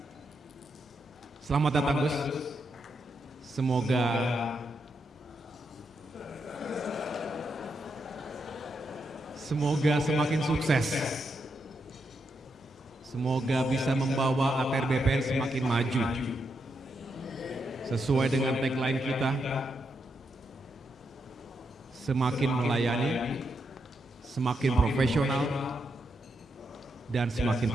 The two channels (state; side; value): normal; both; correlation 0.82